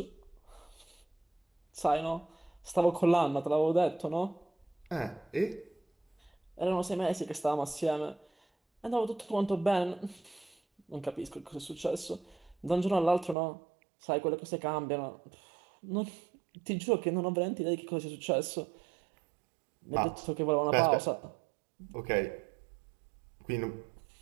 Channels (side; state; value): left; drops out; at 13.4 s